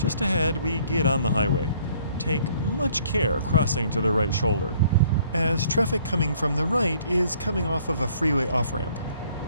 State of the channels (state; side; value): inverted; both; correlation -0.60